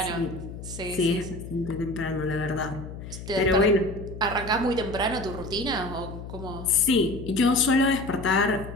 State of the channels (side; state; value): left; noise; hum, 11 dB below the sound